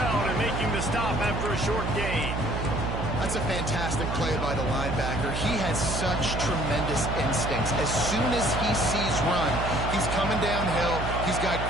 and making the stop after a short gain. That's a fantastic play by the linebacker. He has such tremendous instincts. As soon as he sees run, he's coming downhill. He's got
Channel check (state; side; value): noise; right; hum, 3 dB below the sound